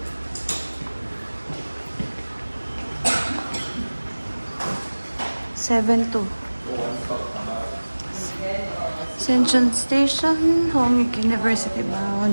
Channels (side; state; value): both; inverted; correlation -1.00